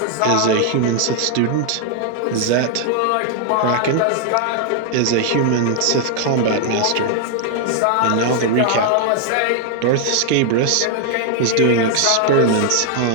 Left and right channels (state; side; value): different; both; correlation 0.00